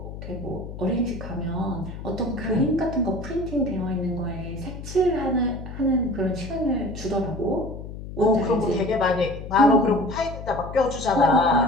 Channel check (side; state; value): left; noise; hum, 10 dB below the sound